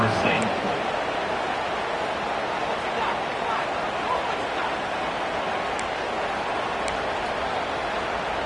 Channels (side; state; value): both; identical; correlation 1.00